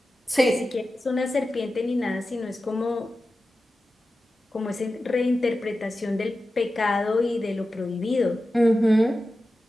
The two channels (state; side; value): normal; both; correlation 0.93